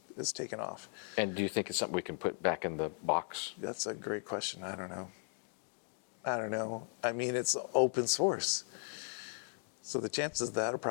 is taken off. And do you think it's something we can put back in the box? That's a great question. I don't know. I mean, it's open source, so the chances of that are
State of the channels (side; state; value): right; silent; 53 dB below the other